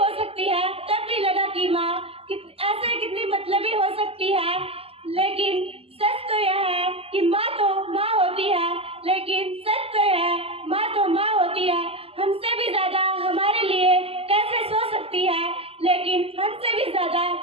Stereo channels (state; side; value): late; left; 0.28 ms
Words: सकती है, तब भी लगा कि माँ ऐसे कितनी मतलबी हो सकती है। लेकिन सच तो यह है कि माँ तो माँ होती है, लेकिन सच तो यह है माँ तो माँ होती है। हमसे भी ज्यादा हमारे लिए कैसे सोच सकती है, लेकिन हमसे भी ज्यादा